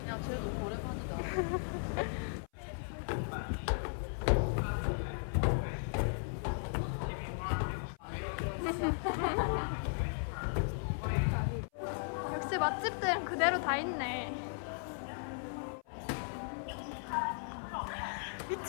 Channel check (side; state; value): right; silent; 53 dB below the other